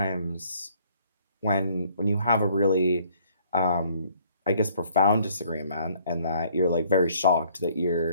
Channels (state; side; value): inverted; both; correlation -0.62